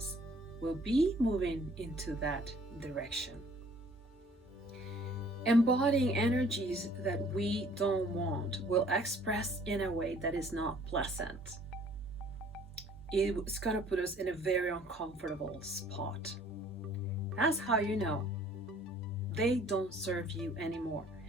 will be moving into that direction. Embodying energies that we don't want will express in a way that is not pleasant. It's going to put us in a very uncomfortable spot. That's how you know they don't serve you anymore,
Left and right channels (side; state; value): both; normal; correlation 0.56